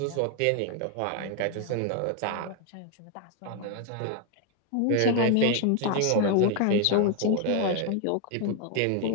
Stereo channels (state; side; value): different; both; correlation 0.01